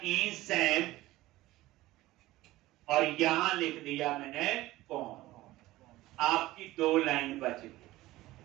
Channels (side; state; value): left; quieter; 17.3 dB